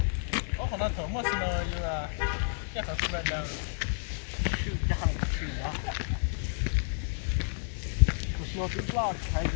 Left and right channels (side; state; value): right; silent; digital silence